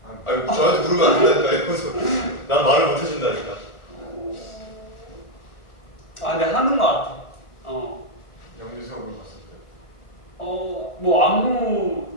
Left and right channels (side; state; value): right; late; 1.4 ms